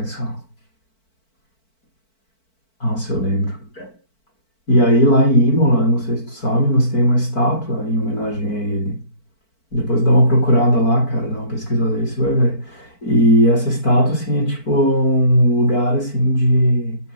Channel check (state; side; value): late; right; 4.5 ms